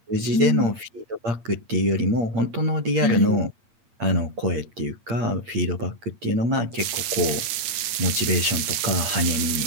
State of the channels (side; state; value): left; late; 8.8 ms